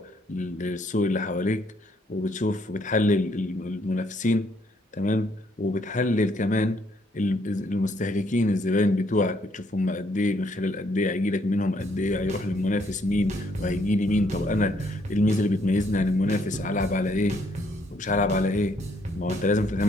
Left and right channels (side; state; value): both; normal; correlation 0.69